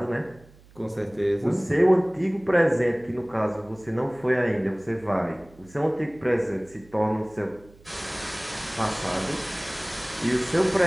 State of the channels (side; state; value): right; noise; hum, 25 dB below the sound